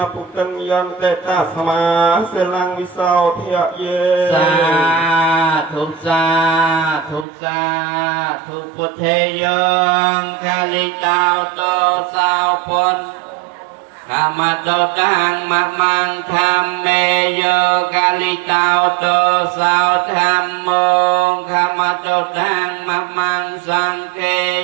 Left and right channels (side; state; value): left; drops out; at 7.2 s